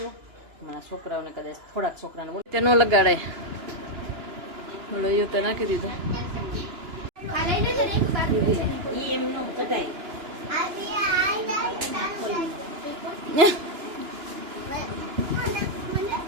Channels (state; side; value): late; left; 2.9 ms